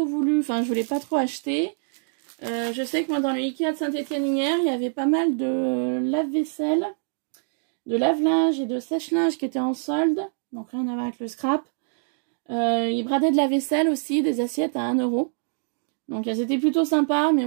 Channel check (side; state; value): left; silent; digital silence